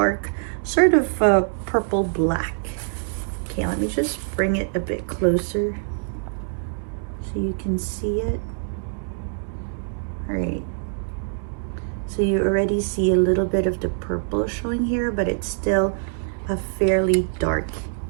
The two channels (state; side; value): silent; left; digital silence